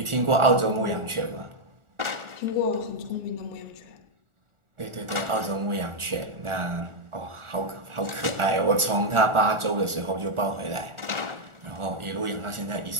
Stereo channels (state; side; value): late; left; 1.4 ms